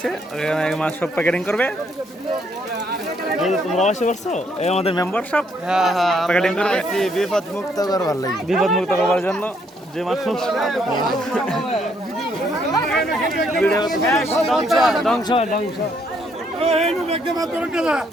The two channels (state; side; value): normal; both; correlation 0.70